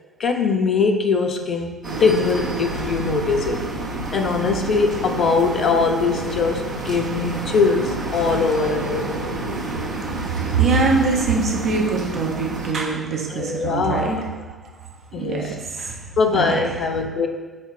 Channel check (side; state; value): both; normal; correlation 0.40